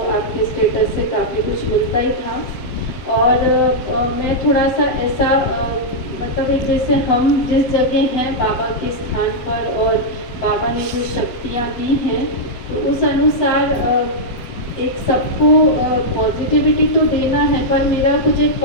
आपके स्टेटस से काफ़ी कुछ मिलता ही था। और मैं थोड़ा सा ऐसा मतलब एक जैसे हम जिस जगह हैं बाबा के स्थान पर और बाबा ने जो शक्तियाँ दी हैं तो उस अनुसार एक सबको पॉजिटिविटी तो देना है, पर मेरा कुछ एक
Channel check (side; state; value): right; late; 7.5 ms